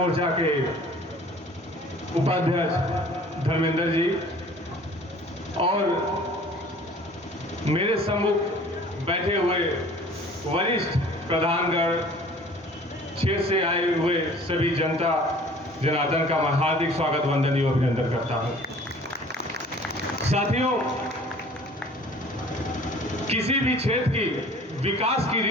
के उपाध्यक्ष धर्मेंद्र जी और मेरे सम्मुख बैठे हुए वरिष्ठ प्रधानगण, क्षेत्र से आए हुए सभी जनता जनार्दन का मैं हार्दिक स्वागत वंदन एवं अभिनंदन करता हूं। साथियों, किसी भी क्षेत्र की विकास की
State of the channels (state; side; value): normal; both; correlation 0.49